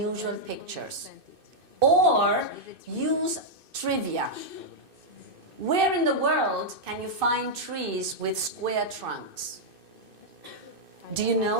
pictures. Or use trivia. Where in the world can you find trees with square trunks? Do you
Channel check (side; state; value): left; late; 2.6 ms